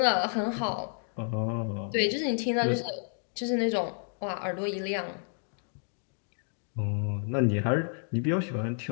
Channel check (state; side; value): silent; right; 57 dB below the other